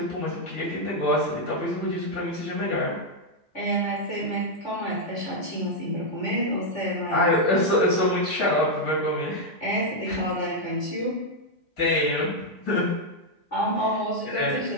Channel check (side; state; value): right; late; 3.5 ms